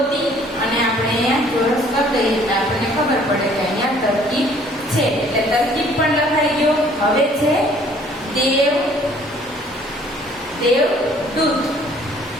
અને આપણે અહીંયા ચોરસ કરી દઈએ એટલે આપણને ખબર પડે કે અહીંયા તરકીબ છે. એટલે તરકીબ પણ લખાઈ ગયો. હવે છે દેવદૂત.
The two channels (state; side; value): normal; both; correlation 0.57